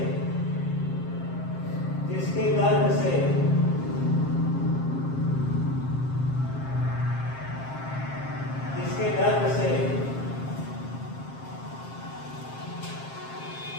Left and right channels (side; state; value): right; late; 7.5 ms